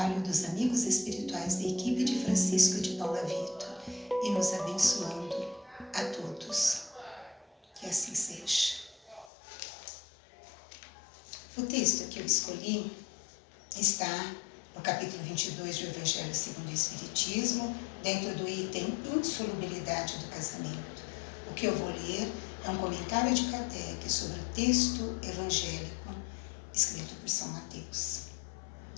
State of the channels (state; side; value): drops out; right; at 9.3 s